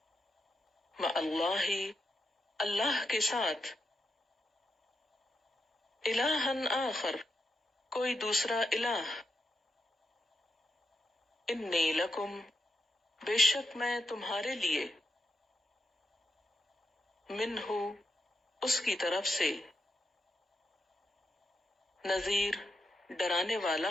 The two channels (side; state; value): both; normal; correlation 0.85